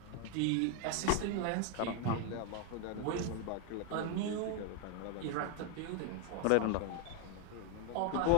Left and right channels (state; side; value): different; both; correlation 0.01